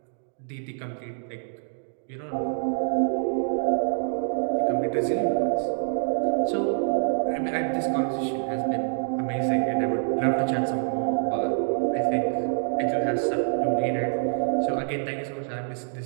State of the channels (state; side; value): silent; left; digital silence